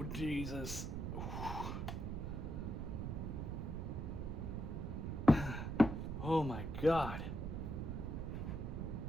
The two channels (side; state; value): right; noise; rumble, 3 dB below the sound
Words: Jesus. Oh my God.